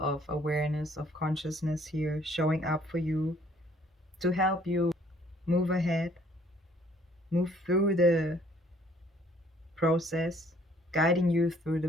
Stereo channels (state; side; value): normal; both; correlation 0.61